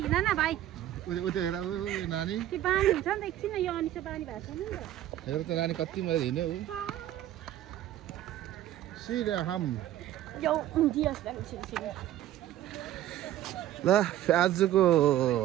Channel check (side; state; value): left; quieter; 13.0 dB